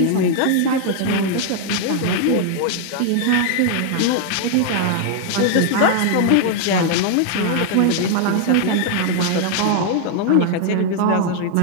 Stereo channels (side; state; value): both; different; correlation 0.00